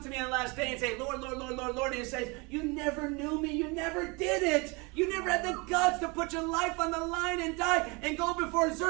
me on the last day and say, 'Lord, Lord, Lord, Lord, Lord.' And he says, 'You never knew me. You never did it. You never had the guts to put your life on the line and die and go before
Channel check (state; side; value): quieter; left; 28.2 dB